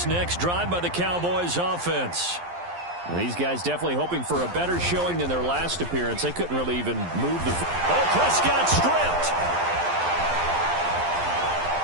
next drive by the Cowboys offense. These guys definitely hoping for a better showing than their last appearance. They couldn't really even move the... Oh, Prescott stripped.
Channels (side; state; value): left; late; 11 ms